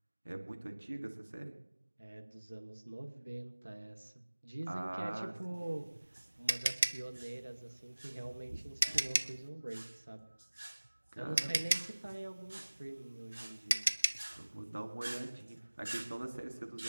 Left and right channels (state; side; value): inverted; both; correlation -1.00